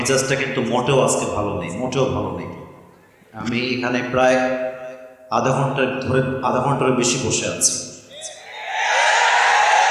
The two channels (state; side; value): identical; both; correlation 1.00